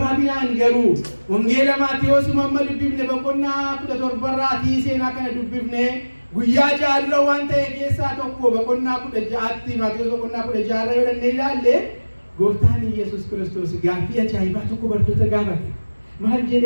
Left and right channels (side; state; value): both; inverted; correlation -1.00